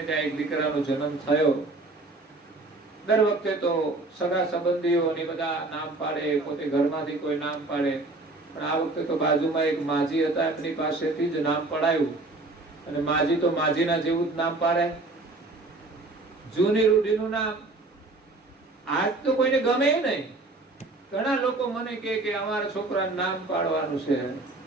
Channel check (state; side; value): quieter; left; 3.1 dB